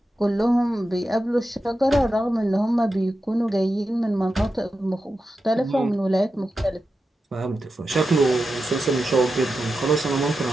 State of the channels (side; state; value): both; normal; correlation 0.90